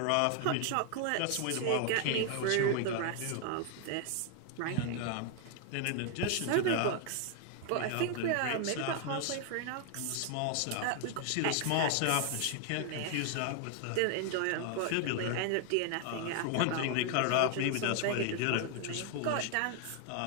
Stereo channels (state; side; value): different; both; correlation 0.00